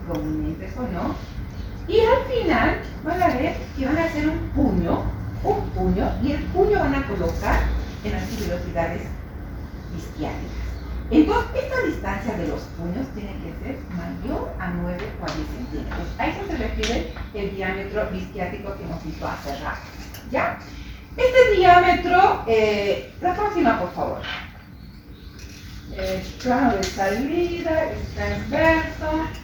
prominentes o no, y al final van a ver que van a hacer un puño, y el puño van a colocar en las tuberosidades isquiáticas. Entonces, esta distancia de los puños tiene que ser mayor a 9 o a 10 centímetros. A eso se refiere el diámetro isquiático que hemos visto hace rato. ¿Ya? Este diámetro, la próxima, por favor. Plano de salida, es transverso.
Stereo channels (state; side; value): identical; both; correlation 1.00